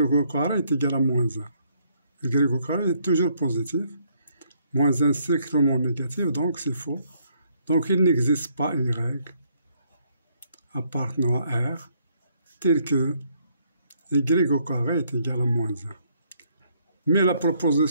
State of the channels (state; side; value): inverted; both; correlation -0.70